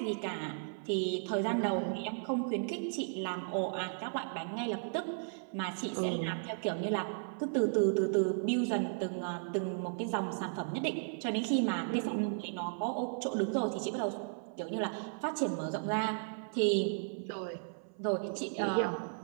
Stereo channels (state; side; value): silent; left; 54 dB below the other